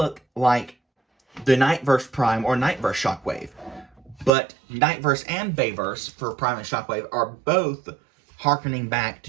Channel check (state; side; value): drops out; left; at 4.3 s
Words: like the Nightverse Prime or Nightverse Shockwave. But Nightverse and Bayverse for Prime and Shockwave are both harkening back